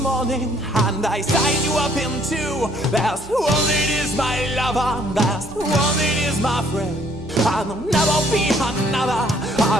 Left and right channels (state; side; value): noise; right; hum, 19 dB below the sound